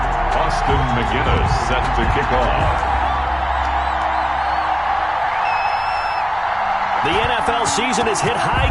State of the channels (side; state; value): both; identical; correlation 1.00